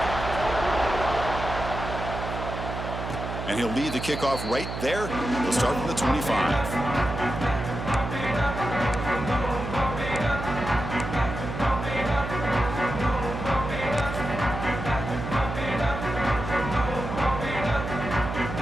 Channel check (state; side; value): noise; right; hum, 6 dB below the sound